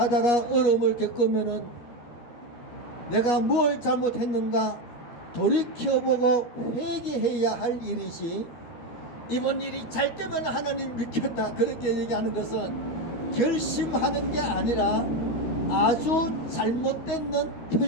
어려움을 겪으면은 내가 뭘 잘못했는가 돌이켜보고 회개해야 할 일이지, 이번 일이 잘 되면 하나님 믿겠다 그렇게 얘기하는 것은 결심하는 게 아니라 아주 잘못된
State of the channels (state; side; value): late; right; 13 ms